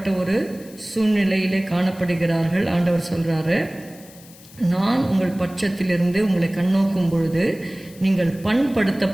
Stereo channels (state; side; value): noise; left; hiss, 22 dB below the sound